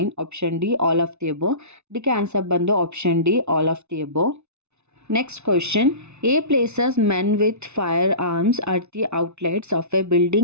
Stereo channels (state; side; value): late; left; 0.81 ms